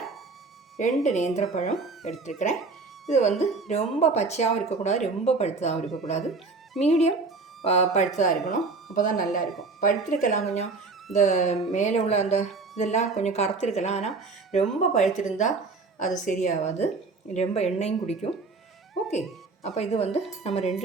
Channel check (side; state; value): left; quieter; 4.0 dB